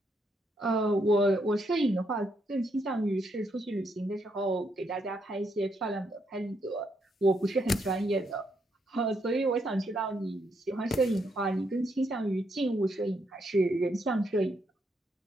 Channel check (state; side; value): normal; both; correlation 0.77